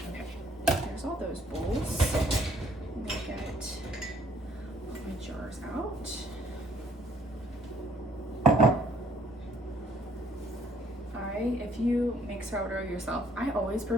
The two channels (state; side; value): normal; both; correlation 0.64